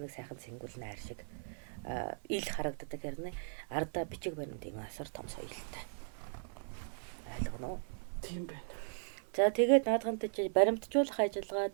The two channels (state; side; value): silent; left; 53 dB below the other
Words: нэг сайхан сэнгүүл найр шиг ил харагддаг хэрнээ ардаа бичиг баримт юм асар том соёлтой. Ойлгоно уу? Тийм байна. За тэгээд наадхантай чи баримтжуулах ажиллагаа